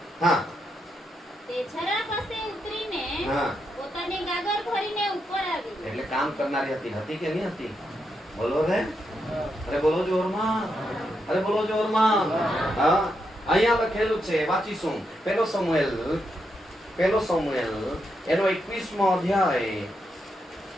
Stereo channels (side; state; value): both; normal; correlation 0.82